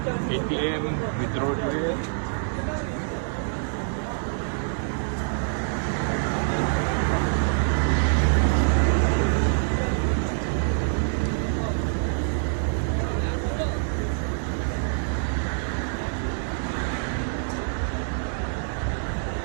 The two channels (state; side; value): silent; left; 61 dB below the other